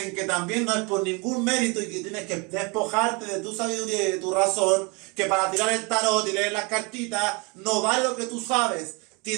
que también no es por ningún mérito y que tienes que despojarte de tu sabiduría y de tu razón, que para tirar el tarot y leer las cartitas no vale lo que tú sabes.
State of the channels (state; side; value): quieter; left; 29.6 dB